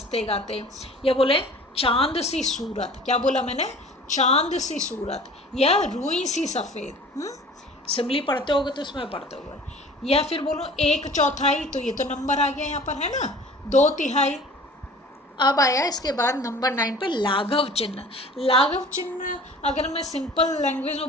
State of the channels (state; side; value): normal; both; correlation 0.45